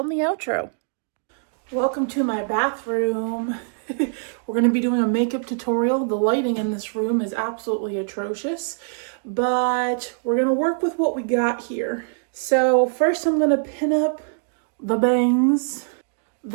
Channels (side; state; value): left; silent; digital silence